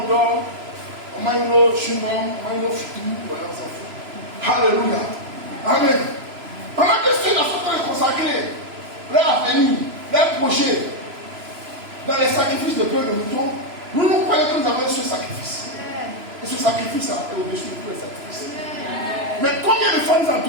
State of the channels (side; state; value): left; late; 3.0 ms